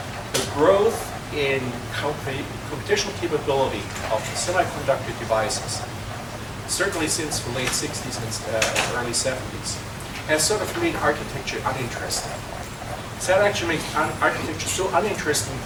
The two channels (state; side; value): identical; both; correlation 1.00